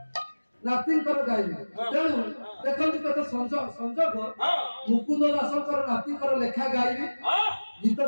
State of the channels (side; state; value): both; inverted; correlation -1.00